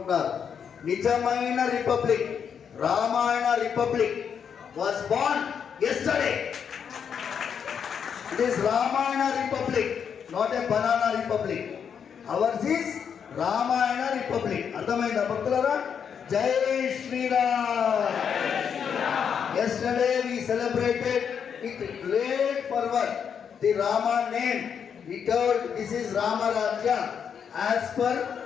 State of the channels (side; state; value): right; quieter; 7.4 dB